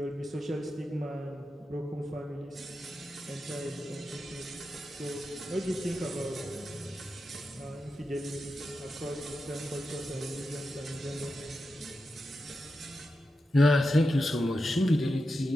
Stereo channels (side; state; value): both; normal; correlation 0.90